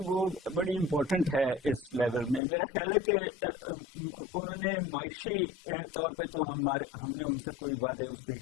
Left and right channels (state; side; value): drops out; right; at 2.4 s